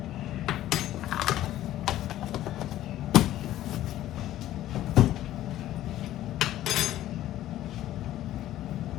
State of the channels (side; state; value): right; quieter; 13.6 dB